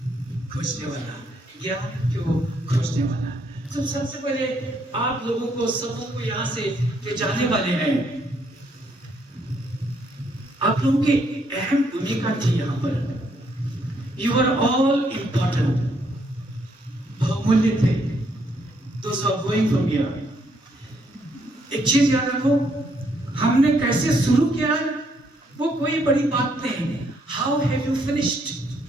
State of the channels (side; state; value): both; normal; correlation 0.72